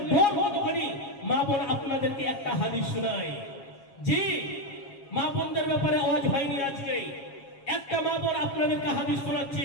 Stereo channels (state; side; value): late; right; 7.3 ms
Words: ডর কতখানি মা বোন আপনাদেরকে একটা হাদিস শোনায় জি মা বোনদের ব্যাপারে আওয়াজ হয়নি আজকে একটা মা বোন আপনাদেরকে হাদিস